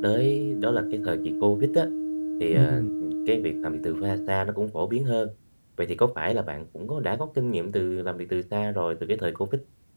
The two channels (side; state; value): both; inverted; correlation -1.00